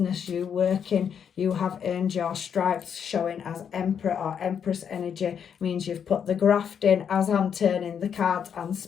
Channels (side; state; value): right; quieter; 7.8 dB